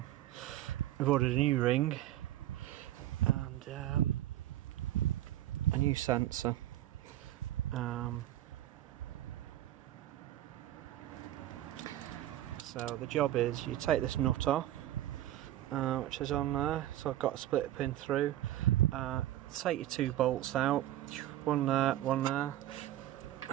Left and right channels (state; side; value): quieter; left; 13.8 dB